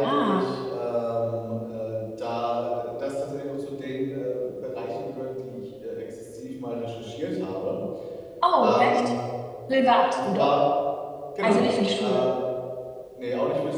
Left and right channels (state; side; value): identical; both; correlation 1.00